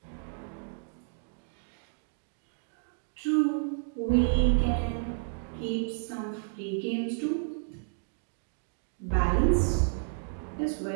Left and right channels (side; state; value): left; silent; digital silence